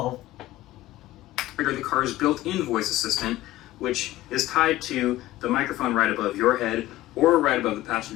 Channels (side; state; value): right; quieter; 16.0 dB